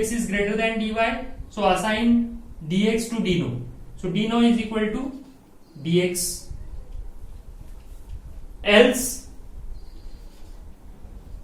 is greater than dy, so assign dx to dno. So dno is equal to dx. Else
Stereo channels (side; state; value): both; identical; correlation 1.00